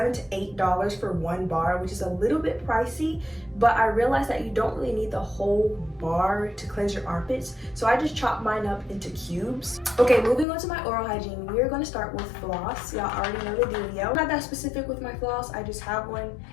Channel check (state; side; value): drops out; right; at 10.5 s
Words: to $8 for one bar, which is a little bit pricey, but I realized that you don't really need the whole bar to cleanse your armpits, so I just chopped mine up into cubes. Okay, moving on to my oral hygiene, we are going to start with floss. Y'all already know the dealio. I'm not that specific with my floss, I just have one.